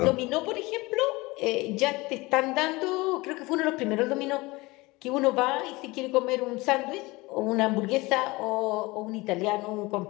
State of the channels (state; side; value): quieter; right; 22.5 dB